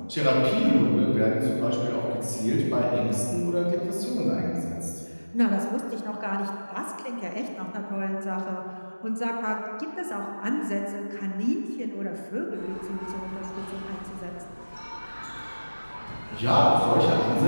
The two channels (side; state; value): both; inverted; correlation -1.00